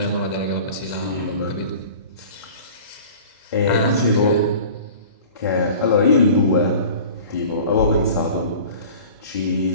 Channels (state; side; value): inverted; both; correlation -0.42